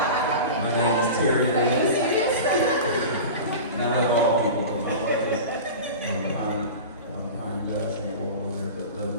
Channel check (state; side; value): inverted; both; correlation -0.32